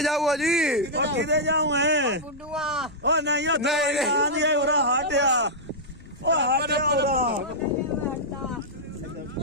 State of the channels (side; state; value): both; normal; correlation -0.08